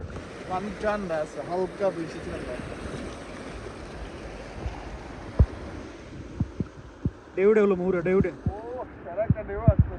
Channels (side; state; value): both; identical; correlation 1.00